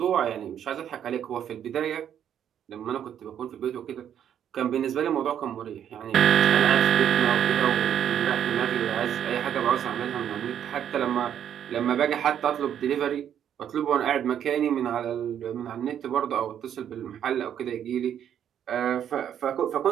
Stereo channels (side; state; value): left; quieter; 9.5 dB